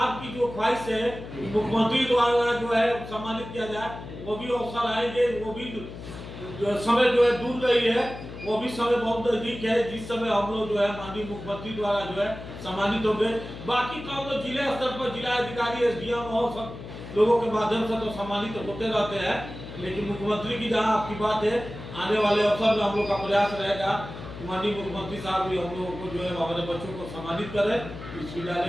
जो ख्वाहिश है मुख्यमंत्री द्वारा जो है सम्मानित किया जाए, वो भी अवसर आएंगे, वो भी समय जो है दूर नहीं है, वो भी समय बहुत नजदीक है जिस समय हम लोग जो है माननीय मुख्यमंत्री द्वारा जो है सम्मानित होंगे। बाकी तो हम लोग जिले स्तर पर जिला अधिकारी, SDM और सब लोगों के माध्यम से तो सम्मानित होते रहते हैं, लेकिन मुख्यमंत्री की जहाँ आपकी बात है, आने वाले अवसर में हम लोग का प्रयास रहेगा माननीय मुख्यमंत्री साहब भी हम लोगों को जो है हमारे बच्चों को सम्मानित करें, इस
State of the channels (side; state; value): left; noise; hum, 12 dB below the sound